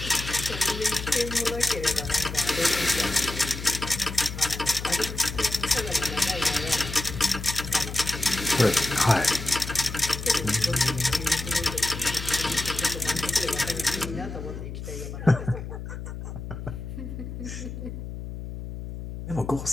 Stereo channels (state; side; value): noise; left; hum, 8 dB below the sound